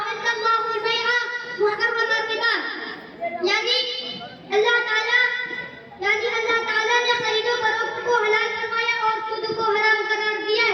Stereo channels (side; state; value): both; identical; correlation 1.00